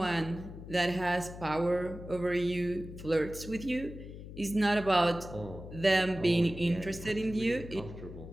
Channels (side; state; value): left; noise; hum, 12 dB below the sound